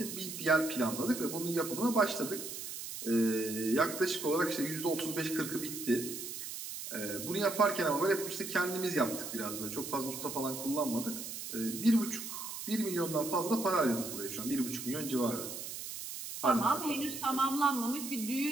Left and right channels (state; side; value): noise; right; hiss, 8 dB below the sound